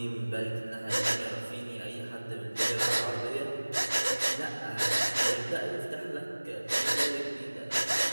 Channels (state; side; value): inverted; both; correlation -1.00